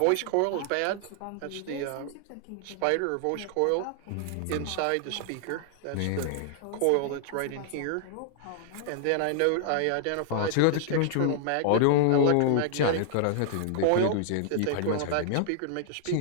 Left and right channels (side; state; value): both; different; correlation -0.01